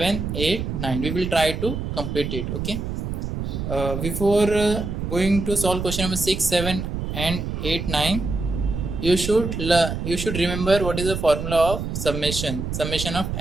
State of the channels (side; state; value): right; noise; rumble, 4 dB below the sound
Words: 8, 9. We will try to complete it. Okay. Before going to solve question number 6, 7 and 8, 9, you should remember what is the formula of summation of